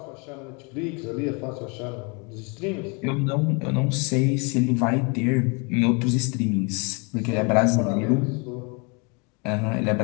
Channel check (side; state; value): right; quieter; 32.2 dB